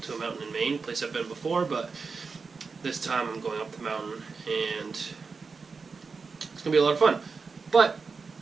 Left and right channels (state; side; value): quieter; left; 4.8 dB